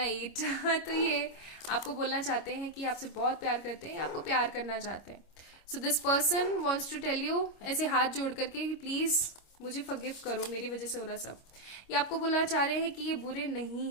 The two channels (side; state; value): right; late; 25 ms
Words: eat तो ये आपको बोलना चाहते हैं कि आपसे बहुत प्यार करते हैं, आपको प्यार करना चाहते हैं। So this person wants to tell you, ऐसे हाथ जोड़ करके कि प्लीज मुझे फॉरगिव करो, मेरी वजह से हो रहा सब। ये आपको बोलना चाह रहे हैं कि ये बुरे